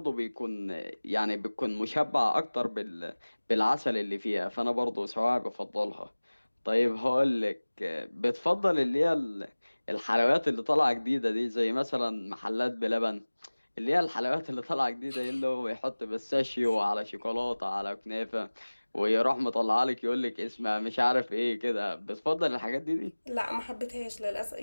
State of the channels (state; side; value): inverted; both; correlation -1.00